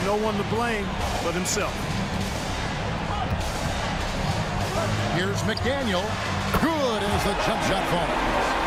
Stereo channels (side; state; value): both; identical; correlation 1.00